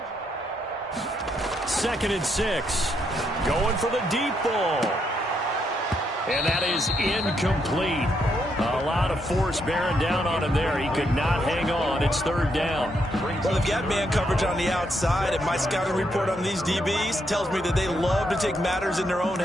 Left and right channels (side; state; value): both; normal; correlation 0.77